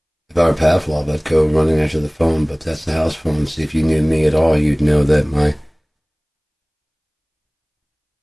If I were Pavlov, I'd go running after the phone, but that's the house phone. See, if you knew me at all, you'd know that my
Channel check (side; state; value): both; identical; correlation 1.00